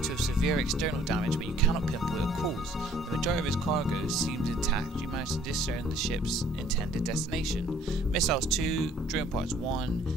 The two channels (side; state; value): both; normal; correlation 0.58